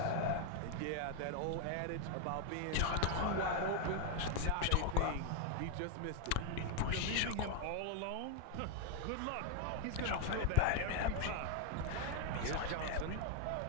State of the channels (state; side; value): different; both; correlation 0.00